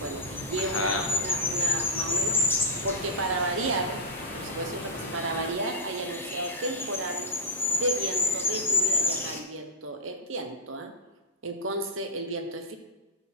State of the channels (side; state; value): both; normal; correlation -0.10